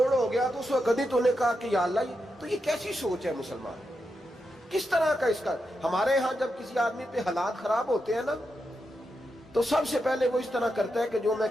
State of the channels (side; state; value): both; normal; correlation 0.86